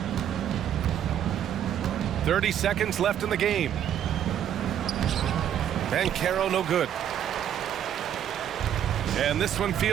30 seconds left in the game. Banchero no good. And this one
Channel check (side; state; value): left; quieter; 10.0 dB